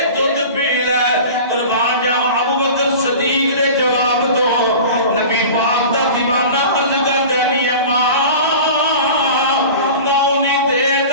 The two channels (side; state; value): both; inverted; correlation -0.37